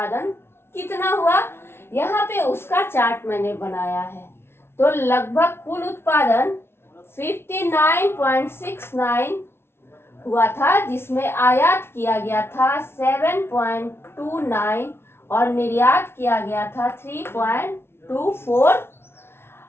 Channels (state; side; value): late; right; 0.12 ms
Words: कितना हुआ? यहाँ पे उसका चार्ट मैंने बनाया है। तो लगभग कुल उत्पादन 59.69 हुआ था, जिसमें आयात किया गया था 7.29 और निर्यात किया गया था 3.24।